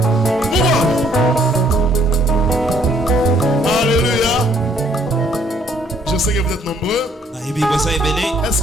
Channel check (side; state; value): both; normal; correlation 0.65